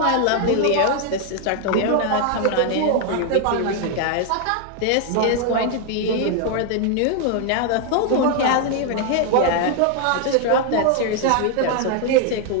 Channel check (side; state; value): both; different; correlation 0.00